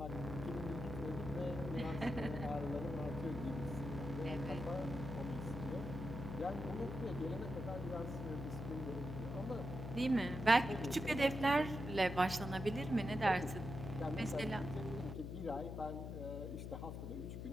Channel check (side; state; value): left; noise; hum, 6 dB below the sound